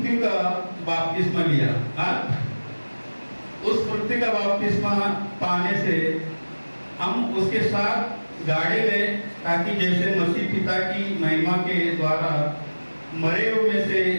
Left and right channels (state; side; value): inverted; both; correlation -1.00